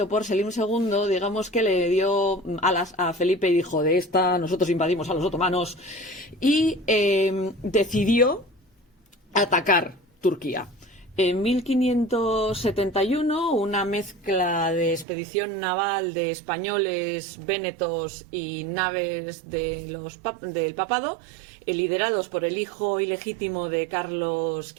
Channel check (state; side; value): drops out; left; at 15.1 s